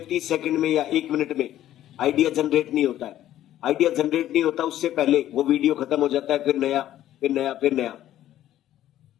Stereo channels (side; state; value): right; quieter; 12.7 dB